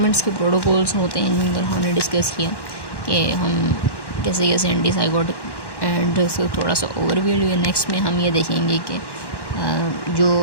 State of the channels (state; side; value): late; right; 1.1 ms